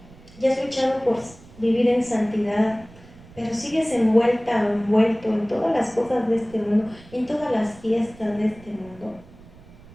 ya has luchado por vivir en santidad, pero sigues envuelta o envuelto en todas las cosas de este mundo, en todas las fiestas de este mundo,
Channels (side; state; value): right; noise; rumble, 22 dB below the sound